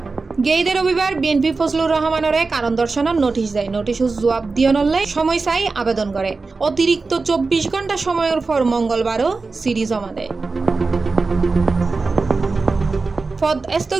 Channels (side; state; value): left; quieter; 4.0 dB